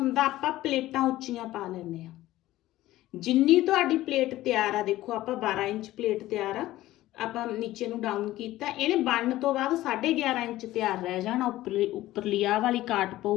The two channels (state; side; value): quieter; right; 15.8 dB